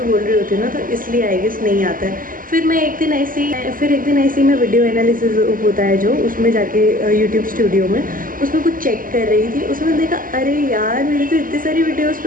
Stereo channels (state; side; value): late; left; 0.41 ms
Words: बोल रही होती हूँ ना, तो इसलिए आई गेस नहीं आता है. फिर एक दिन ऐसे ही मैं वीडियो एनालिसिस होता है जो, उसमें जाके यूट्यूब स्टूडियो में उसमें कुछ चेक कर रही थी। उसमें देखा अरे यार मेरी तो इतनी सारी वीडियोस